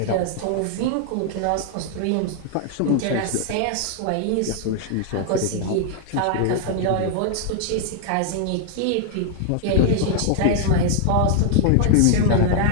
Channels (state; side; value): different; both; correlation 0.00